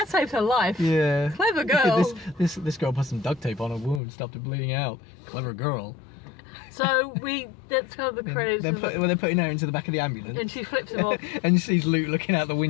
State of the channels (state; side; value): drops out; right; at 4.0 s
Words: saved her life. Yeah. Clever girl. This girl put some duct tape on her wound, stopped it bleeding out. Clever girl. So that's kind of the credits. They're putting her into the back of the ambulance. And she flips him off. And she sees Luke looking out the